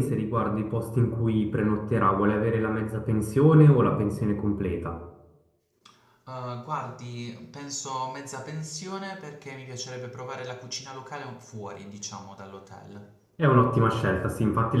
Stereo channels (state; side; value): identical; both; correlation 1.00